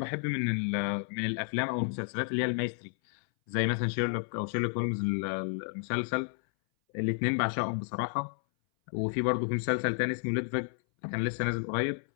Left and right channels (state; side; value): silent; right; 57 dB below the other